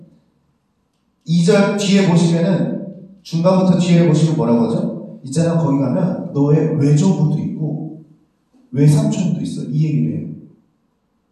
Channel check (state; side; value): identical; both; correlation 1.00